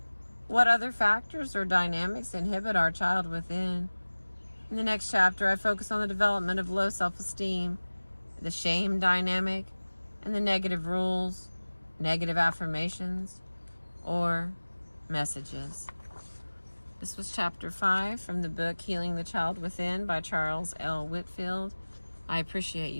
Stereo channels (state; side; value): inverted; both; correlation -1.00